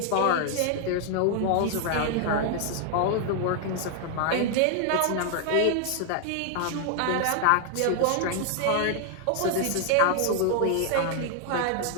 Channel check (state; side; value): different; both; correlation 0.00